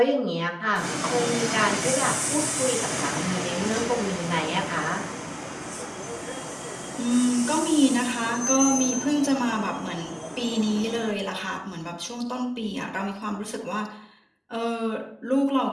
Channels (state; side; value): identical; both; correlation 1.00